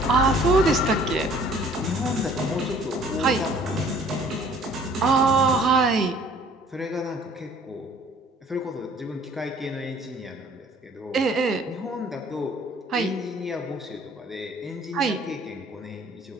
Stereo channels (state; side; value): normal; both; correlation 0.55